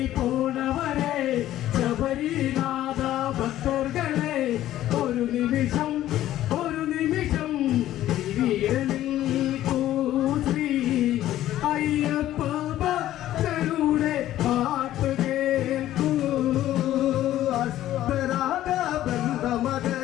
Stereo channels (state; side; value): quieter; right; 13.4 dB